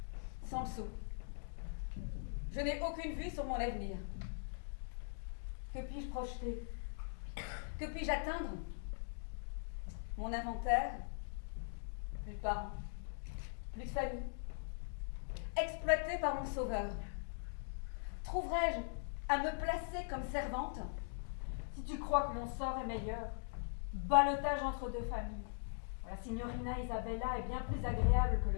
sans le sou. Je n'ai aucune vue sur mon avenir. Que puis-je projeter? Que puis-je atteindre? Mon inventaire? Plus de parents, plus de famille. Exploité par mon sauveur. Trouverais-je à me placer comme servante? Si tu crois que mon sort est meilleur, ballottage entre deux familles. La signorina Isabella est bien plus agréable que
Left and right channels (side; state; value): right; silent; digital silence